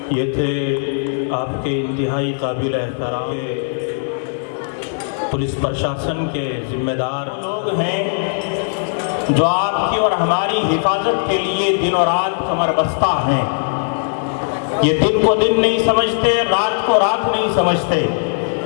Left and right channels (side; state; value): right; silent; 67 dB below the other